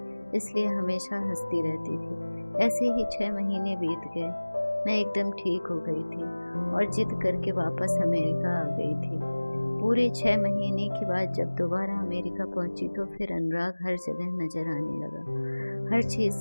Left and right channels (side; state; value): both; inverted; correlation -1.00